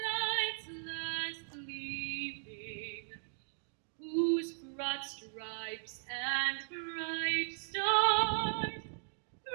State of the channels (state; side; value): silent; left; digital silence